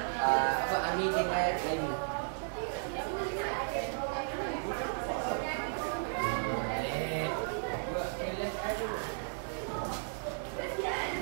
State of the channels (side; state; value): left; silent; digital silence